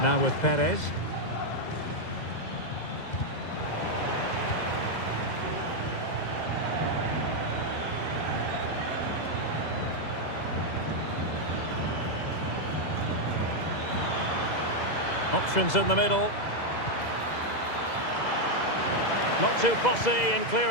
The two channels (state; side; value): late; right; 2.0 ms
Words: Now with Perez. Options in the middle. Not too fussy in